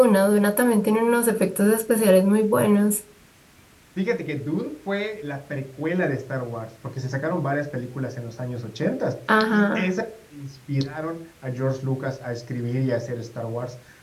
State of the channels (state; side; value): identical; both; correlation 1.00